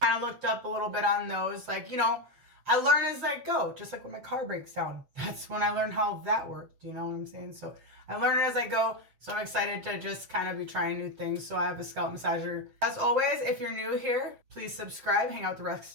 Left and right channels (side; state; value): left; late; 7.6 ms